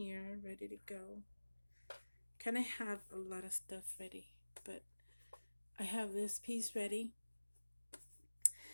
ready to go. Kind of have a lot of stuff ready, but I have this piece ready.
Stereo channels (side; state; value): both; inverted; correlation -1.00